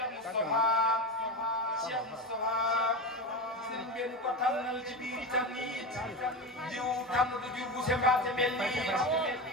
Moustapha sëriñ benn ko tànnal ci biir tànnit jiw tànn du jur bu sembaate mel nii ku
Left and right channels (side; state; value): both; normal; correlation 0.21